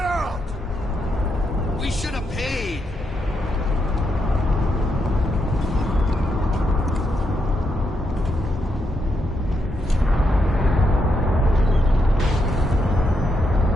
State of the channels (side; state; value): both; normal; correlation 0.81